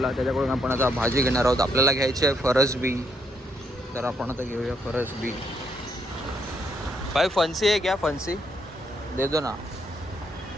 त्याच्याकडून आपण आता भाजी घेणार आहोत. आपल्याला घ्यायची आहे फरसबी. तर आपण आता घेऊया फरसबी. भाई फणसी आहे क्या? फणसी दे दो ना,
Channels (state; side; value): normal; both; correlation 0.74